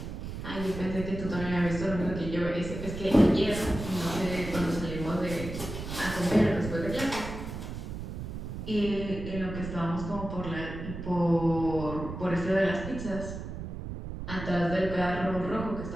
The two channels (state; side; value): noise; right; rumble, 8 dB below the sound